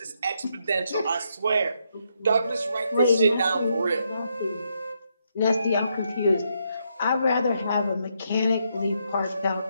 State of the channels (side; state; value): both; inverted; correlation -0.78